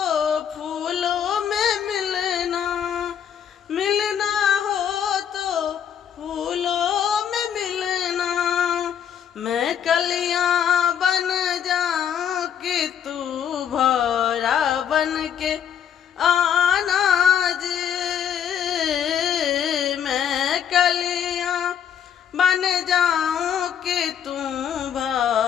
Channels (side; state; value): right; quieter; 8.8 dB